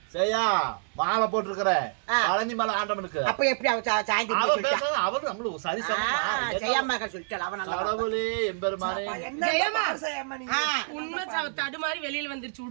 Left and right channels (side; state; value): left; silent; digital silence